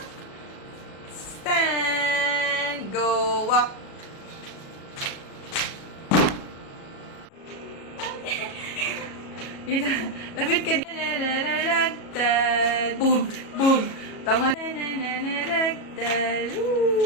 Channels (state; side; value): late; right; 37 ms